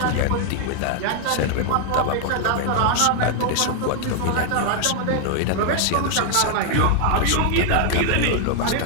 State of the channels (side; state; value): both; different; correlation 0.00